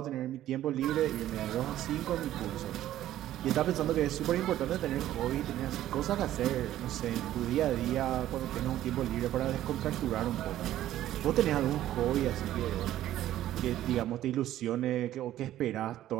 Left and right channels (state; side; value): quieter; left; 13.1 dB